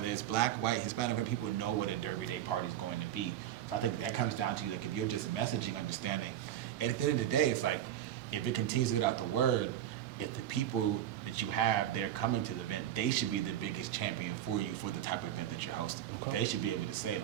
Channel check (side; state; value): left; quieter; 11.6 dB